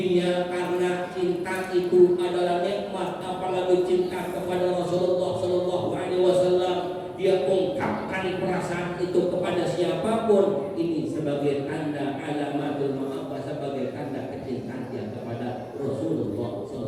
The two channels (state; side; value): identical; both; correlation 1.00